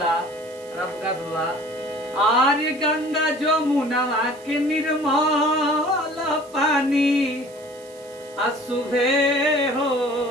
रबकास बाबा आर्य गंगा जमुना के निर्मल पानी असुभे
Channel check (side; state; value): right; noise; hiss, 24 dB below the sound